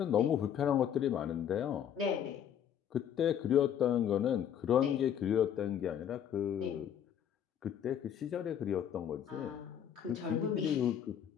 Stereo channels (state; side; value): quieter; right; 9.2 dB